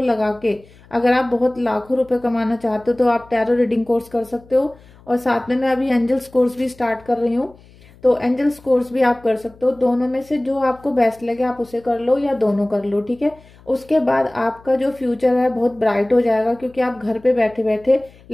लगा के अगर आप बहुत लाखों रुपए कमाना चाहते हो तो आप टैरो रीडिंग कोर्स कर सकते हो। और साथ में मैं अभी एंजल्स कोर्स भी स्टार्ट कर रही हूँ, तो एंजल्स कोर्स भी आप कर सकते हो। दोनों में से जो आपको बेस्ट लगे आप उसे कर लो या दोनों कर लो, ठीक है। उसके बाद आपका जो फ्यूचर है बहुत ब्राइट हो जाएगा, क्योंकि आप घर पे बैठे बैठे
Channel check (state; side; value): noise; left; hum, 26 dB below the sound